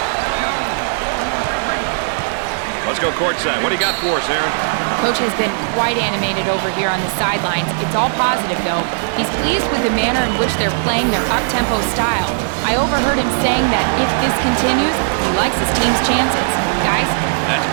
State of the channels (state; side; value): silent; left; digital silence